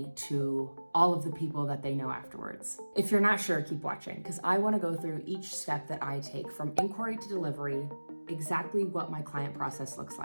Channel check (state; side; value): inverted; both; correlation -1.00